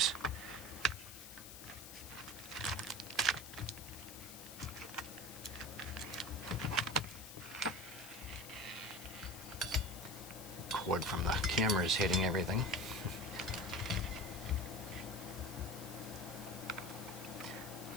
Cord from the camera is hitting everything.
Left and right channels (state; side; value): noise; left; hiss, 12 dB below the sound